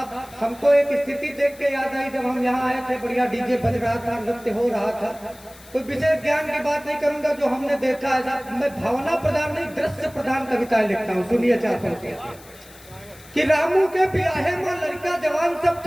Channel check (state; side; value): noise; left; hiss, 22 dB below the sound